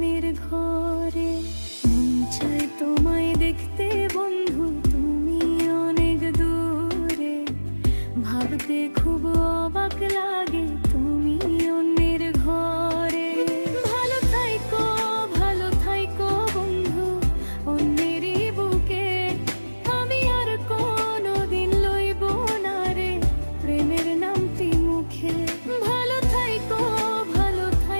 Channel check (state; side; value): inverted; both; correlation -1.00